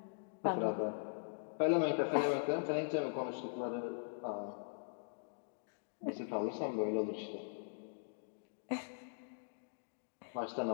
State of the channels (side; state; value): right; silent; digital silence